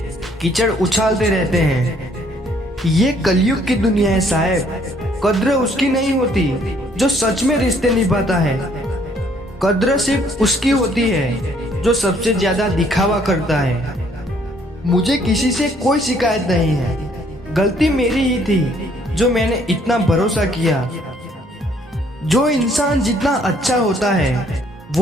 कीचड़ उछालते रहते हैं। ये कलयुग की दुनिया है साहब। कद्र उसकी नहीं होती जो सच में रिश्ते निभाता है। कद्र सिर्फ उसकी होती है जो सबसे ज्यादा दिखावा करता है। मुझे किसी से कोई शिकायत नहीं है, गलती मेरी ही थी जो मैंने इतना भरोसा किया। जो इंसान जितना अच्छा होता है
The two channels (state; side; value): normal; both; correlation 0.64